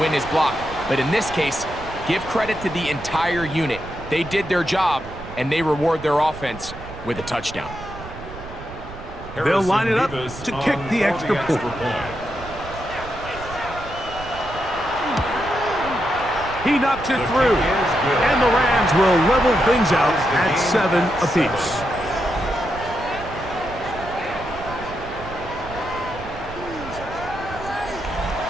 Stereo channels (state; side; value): noise; right; rumble, 14 dB below the sound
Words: his block. But in this case, give credit to the entire unit. They did their job, and they reward their offense with a touchdown. They'll line it up to kick the extra point. He knocks it through, and the Rams will level things out at 7 apiece.